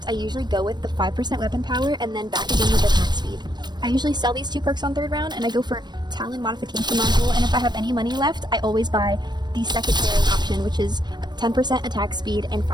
I usually go with the 5% weapon power and then back again with attack speed. I usually sell these 2 perks on 3rd round and I go for Talon Modification Module, and if I have any money left, I always buy the secondary option, which is 10% attack speed and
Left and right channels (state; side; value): late; left; 0.21 ms